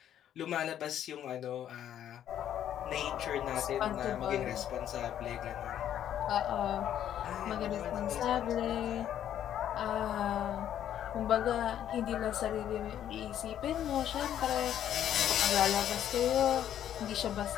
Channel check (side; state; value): right; quieter; 10.6 dB